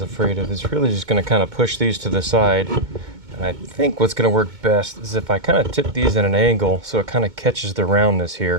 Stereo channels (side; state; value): left; late; 2.2 ms